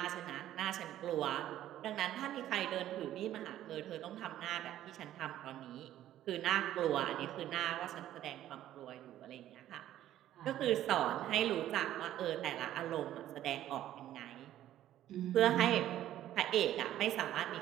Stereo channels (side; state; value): left; quieter; 12.7 dB